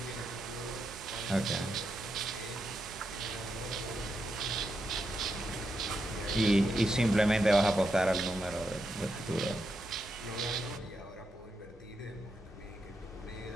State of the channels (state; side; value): normal; both; correlation 0.84